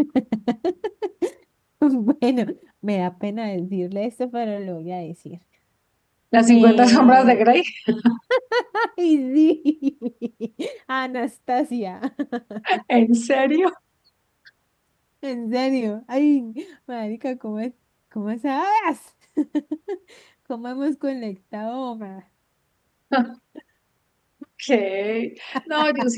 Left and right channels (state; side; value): identical; both; correlation 1.00